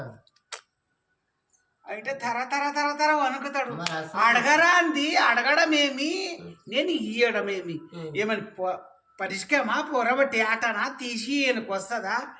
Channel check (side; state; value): both; identical; correlation 1.00